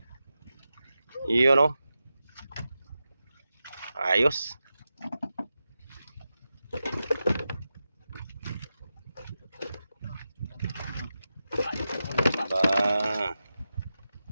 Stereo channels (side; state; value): both; inverted; correlation -0.91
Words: Yun o. Ayos. Ba.